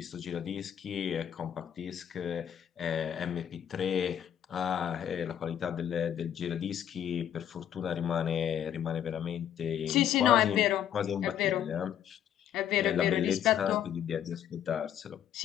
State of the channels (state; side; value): quieter; right; 10.0 dB